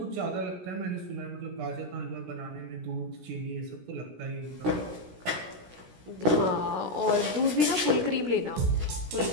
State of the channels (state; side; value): late; left; 16 ms